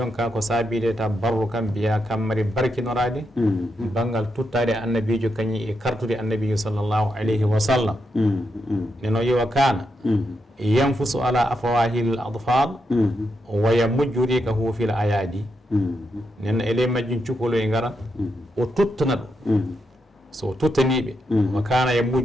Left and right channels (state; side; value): normal; both; correlation 0.83